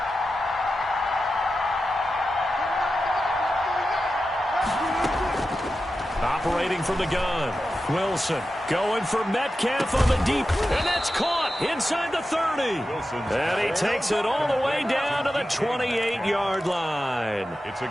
Operating from the gun. Wilson going for Metcalf on the deep. And that's caught inside the 30. And he takes it all the way down to the 28-yard line. It's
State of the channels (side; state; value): both; normal; correlation 0.92